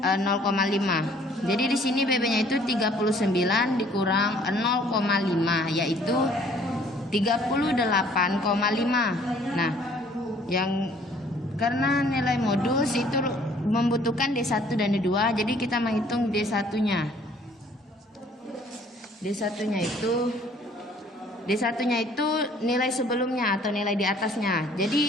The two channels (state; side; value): normal; both; correlation 0.58